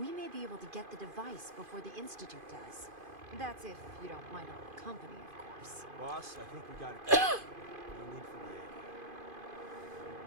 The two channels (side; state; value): left; late; 2.5 ms